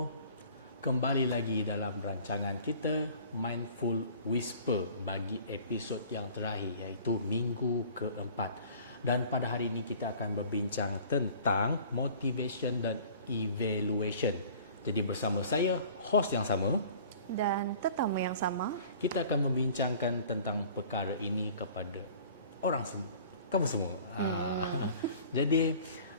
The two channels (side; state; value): both; inverted; correlation -0.48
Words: kembali lagi dalam rancangan kita Mindful Whisper bagi episod yang terakhir iaitu minggu keempat. Dan pada hari ini kita akan berbincang tentang motivation dan evaluation. Jadi bersama saya, host yang sama dan tetamu yang sama, kita akan membincangkan tentang perkara ini kepada orang semua, kamu semua. Jadi,